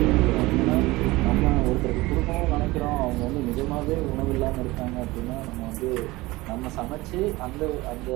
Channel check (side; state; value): left; quieter; 20.4 dB